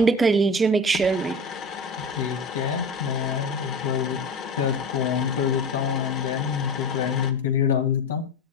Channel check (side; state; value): both; normal; correlation 0.29